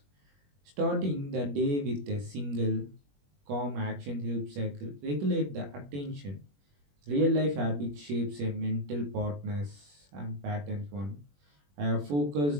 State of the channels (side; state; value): left; late; 21 ms